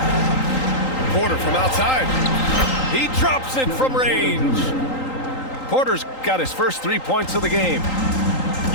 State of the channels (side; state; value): right; late; 3.8 ms